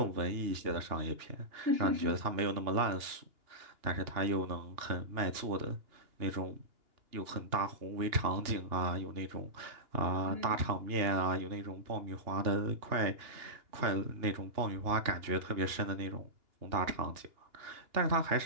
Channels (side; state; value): left; late; 2.8 ms